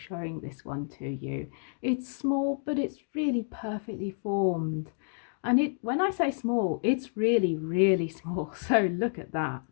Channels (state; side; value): silent; right; digital silence